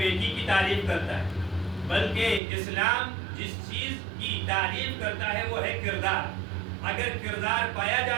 کی تعریف کرتا ہے، بلکہ اسلام جس چیز کی تعریف کرتا ہے وہ ہے کردار. اگر کردار پایا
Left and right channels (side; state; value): left; drops out; at 2.4 s